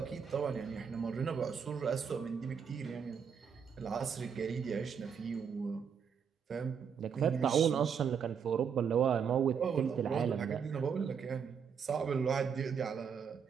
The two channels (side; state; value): left; quieter; 6.9 dB